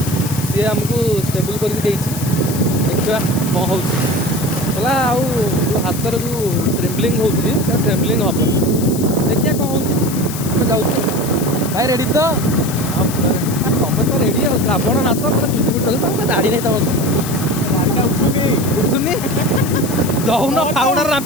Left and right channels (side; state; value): left; noise; hiss, 10 dB below the sound